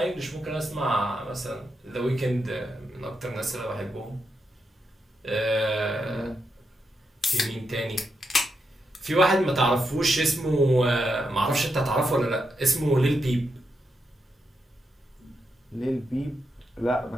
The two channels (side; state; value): both; normal; correlation 0.84